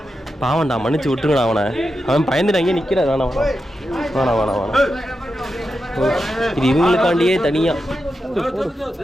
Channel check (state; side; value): normal; both; correlation 0.88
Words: பாவன்டா, மன்னிச்சு விட்டுருங்கடா அவனை. அவன் பயந்துட்டு அங்கே நிற்கிறான். வேணாம் வேணாம் வேணாம் வேணாம் வேணாம். இது இவங்களுக்காண்டியே தனியாக